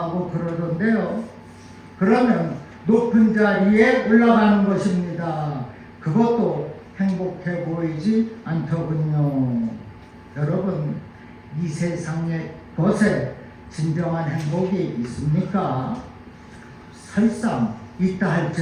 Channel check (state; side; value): identical; both; correlation 1.00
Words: 그러던데요. 그러면 높은 자리에 올라가는 것입니다. 그것도 행복해 보이지 않더군요. 여러분, 이 세상의 것에 진정한 행복이 있습니까? 설상 있다